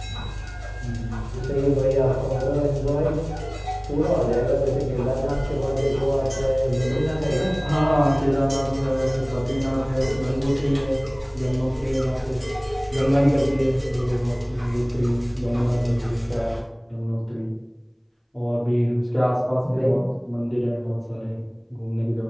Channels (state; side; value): identical; both; correlation 1.00